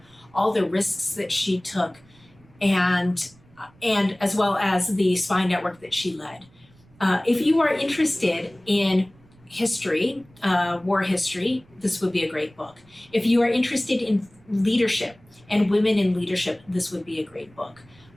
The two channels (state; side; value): noise; right; rumble, 29 dB below the sound